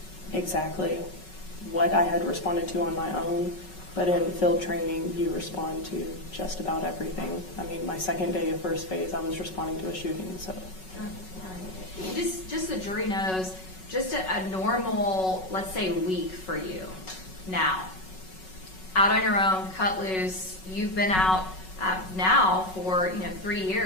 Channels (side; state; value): right; late; 5.4 ms